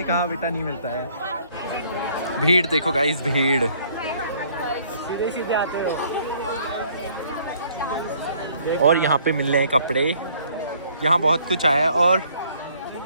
कहा बेटा नहीं मिलता है। भीड़ देखो गाइस, भीड़। सीधे सीधे आते हो। और यहाँ पे मिल रहे हैं कपड़े, यहाँ बहुत कुछ आया है।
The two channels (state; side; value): inverted; both; correlation -0.61